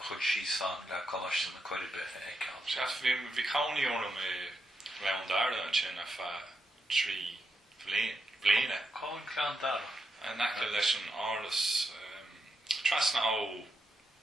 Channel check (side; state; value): both; normal; correlation 0.84